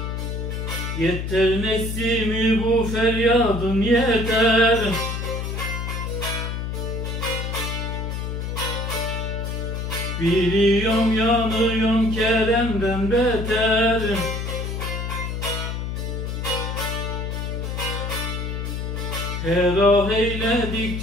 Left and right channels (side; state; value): left; noise; hum, 4 dB below the sound